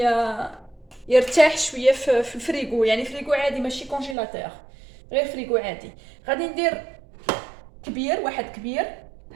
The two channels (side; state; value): left; drops out; at 4.2 s